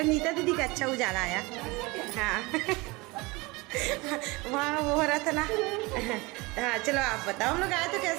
नीता दीदी का अच्छा उजाला आया। हाँ वहाँ वो हो रहा था ना। हाँ चलो आप बताओ, हम लोग आए तो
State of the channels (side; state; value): left; quieter; 24.1 dB